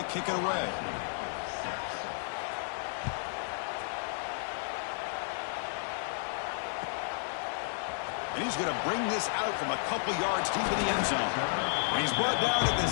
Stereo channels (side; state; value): right; silent; digital silence